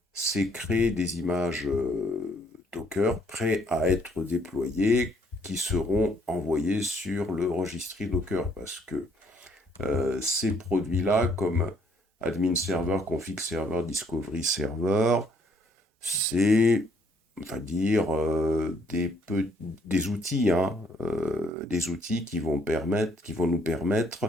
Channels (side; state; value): both; normal; correlation 0.66